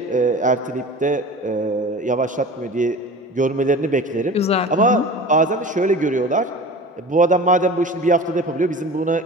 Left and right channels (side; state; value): both; normal; correlation 0.37